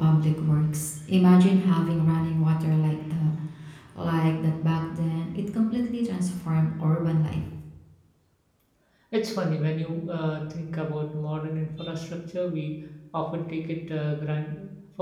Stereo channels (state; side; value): identical; both; correlation 1.00